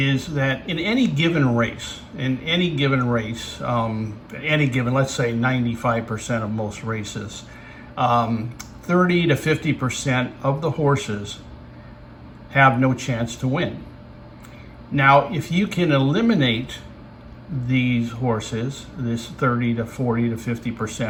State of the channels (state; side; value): identical; both; correlation 1.00